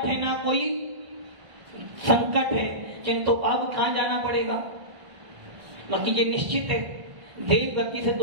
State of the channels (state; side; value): late; left; 1.5 ms